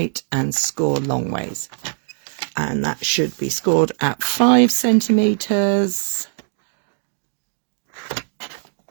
and score long ways. And that should be scored at 5 centimetres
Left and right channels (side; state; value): left; silent; 57 dB below the other